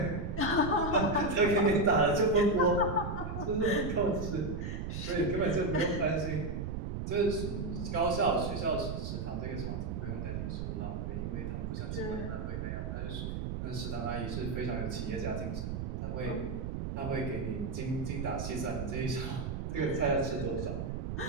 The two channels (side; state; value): right; noise; rumble, 3 dB below the sound